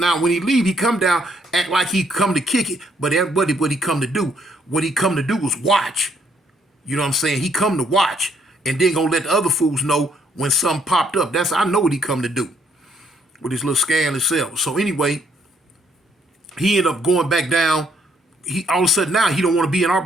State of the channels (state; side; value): normal; both; correlation 0.69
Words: when he leave, he come down, act like he come to kick it. But everybody, what he come to do? What he come to do was watch. You know what I'm saying? He come to watch and then gonna let the other fools know when something popped up. I know what he come to do with his little scandalous self. So anyway, he ended up going back down. He all of a sudden now he don't want to be in our